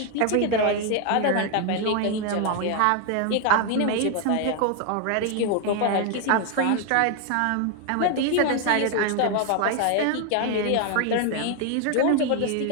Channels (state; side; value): different; both; correlation 0.01